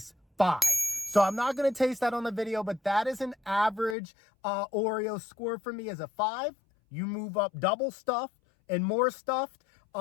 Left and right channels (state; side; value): drops out; right; at 4.0 s